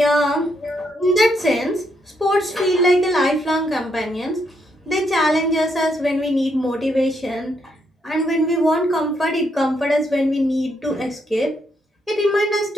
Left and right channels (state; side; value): normal; both; correlation 0.77